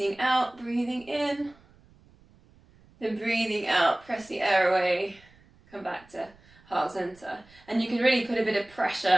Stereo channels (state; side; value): noise; right; rumble, 28 dB below the sound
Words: out, breathing in. Then breathing out, press the air away. Come back to heart center. And you can really put a bit of